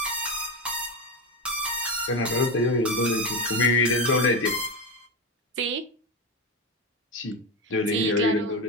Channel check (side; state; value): both; normal; correlation 0.15